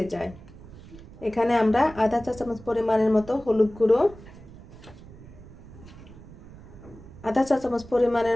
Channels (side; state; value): right; noise; rumble, 18 dB below the sound